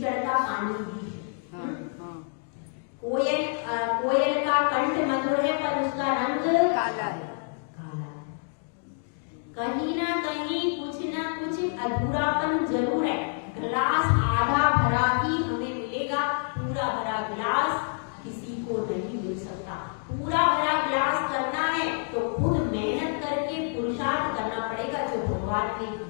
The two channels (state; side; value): silent; right; 59 dB below the other